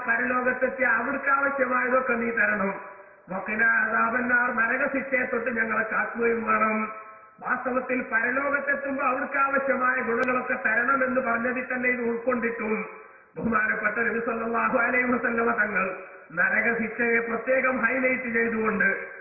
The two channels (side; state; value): both; identical; correlation 1.00